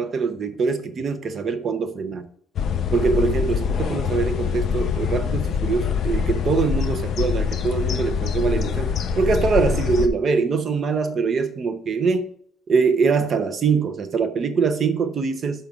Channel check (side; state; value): both; normal; correlation 0.66